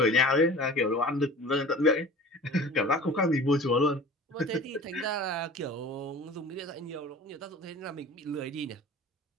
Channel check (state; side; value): normal; both; correlation 0.40